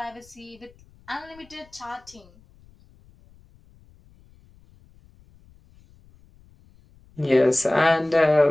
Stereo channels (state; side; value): noise; left; rumble, 28 dB below the sound